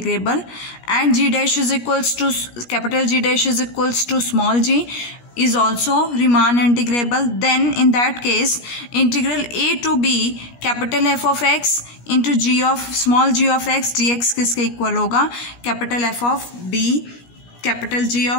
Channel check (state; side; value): late; right; 17 ms